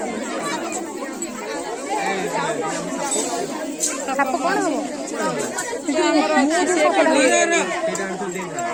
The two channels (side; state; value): both; identical; correlation 1.00